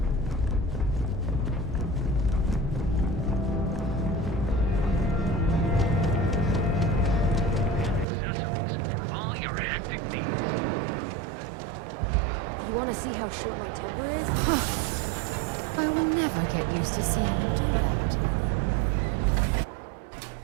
to see how short my temper is? I will never get used to seeing you do that.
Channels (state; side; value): drops out; left; at 8.1 s